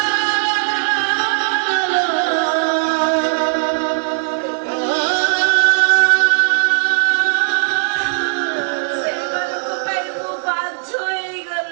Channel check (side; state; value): left; silent; digital silence